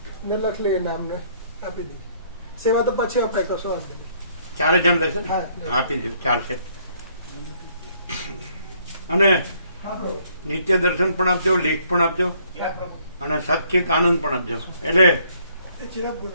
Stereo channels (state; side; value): inverted; both; correlation -0.65